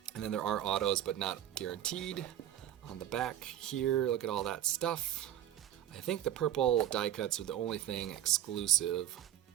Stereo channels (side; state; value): left; quieter; 11.7 dB